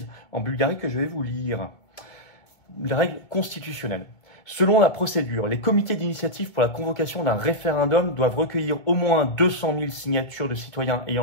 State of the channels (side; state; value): right; late; 2.2 ms